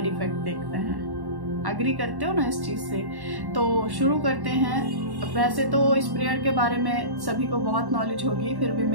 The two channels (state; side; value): late; left; 1.1 ms